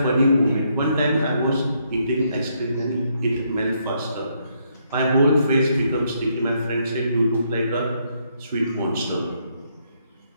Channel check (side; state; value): both; inverted; correlation -0.74